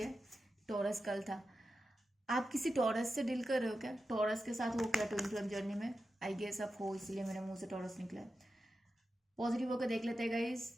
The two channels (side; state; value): both; normal; correlation 0.91